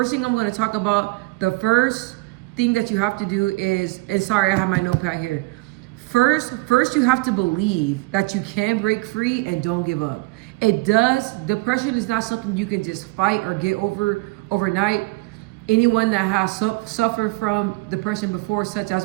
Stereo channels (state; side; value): quieter; left; 24.0 dB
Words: thing I'm going to talk about, the first thing that you have to do is, and sorry, I have my notepad here. First you have to believe that you can break free and don't give up. Depression is not something you can just fight or get over overnight. Anyone that has suffered from depression before, such